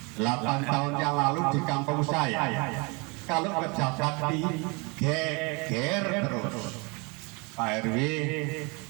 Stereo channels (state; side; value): quieter; left; 29.8 dB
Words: 8 tahun yang lalu di kampung saya, kalau kerja bakti geger terus. Pak RW